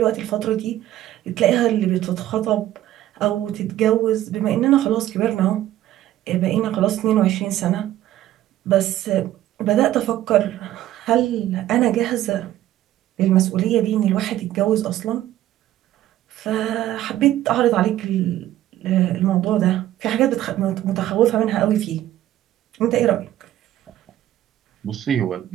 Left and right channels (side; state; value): left; quieter; 13.5 dB